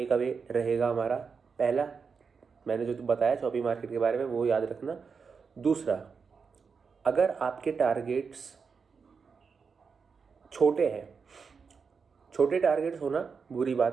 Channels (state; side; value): quieter; left; 5.5 dB